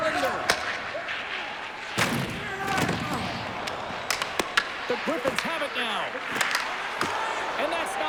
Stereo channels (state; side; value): identical; both; correlation 1.00